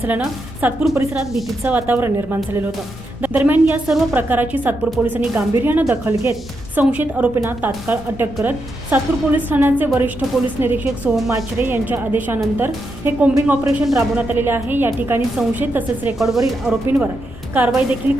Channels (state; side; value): normal; both; correlation 0.84